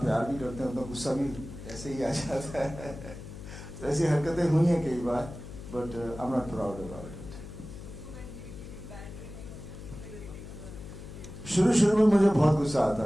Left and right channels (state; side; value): noise; left; hum, 12 dB below the sound